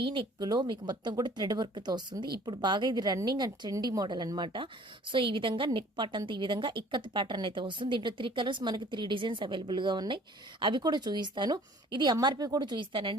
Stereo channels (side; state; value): both; normal; correlation 0.52